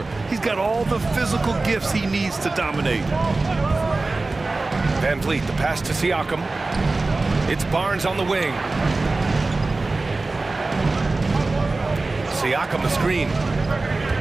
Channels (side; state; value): left; quieter; 3.4 dB